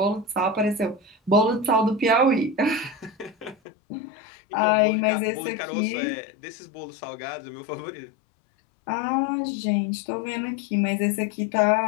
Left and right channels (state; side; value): drops out; right; at 3.6 s